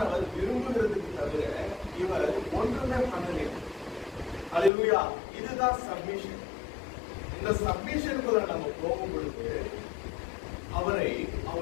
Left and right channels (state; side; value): drops out; right; at 4.7 s